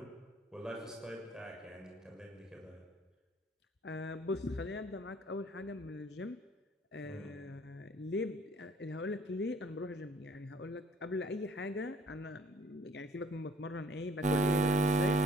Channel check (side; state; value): both; normal; correlation 0.58